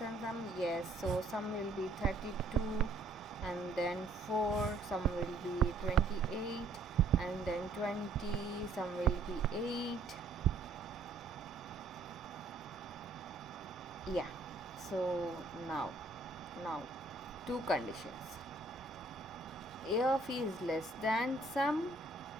sum. Yes, so sum will be 32, and then 4, sum will be 28, and then 20, sum will be 8. Yeah, so now two conditions. A of e is less than sum.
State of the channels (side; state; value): left; quieter; 3.2 dB